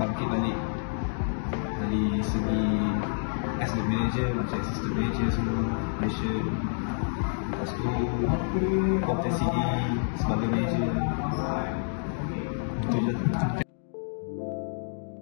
balik dari segi as the manager, macam assistant manager semua, passion. Lepas tu kompetensi sebagai manager. Itu je.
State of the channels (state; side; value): silent; right; digital silence